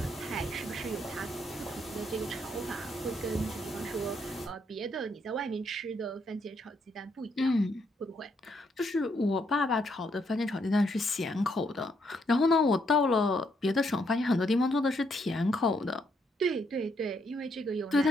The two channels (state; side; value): normal; both; correlation 0.74